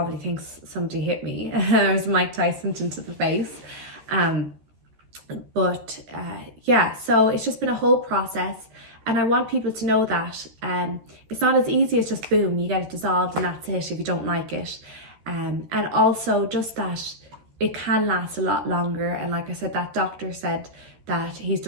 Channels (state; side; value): late; left; 13 ms